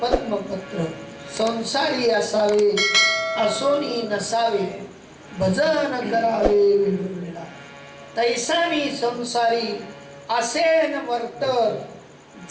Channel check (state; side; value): identical; both; correlation 1.00